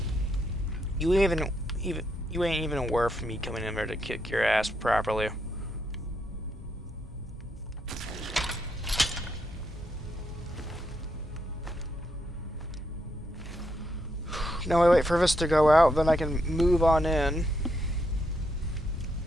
You ain't even worth me coming in there to kick your ass properly. Now I wait for this to go out, then I can move on in.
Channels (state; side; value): normal; both; correlation 0.79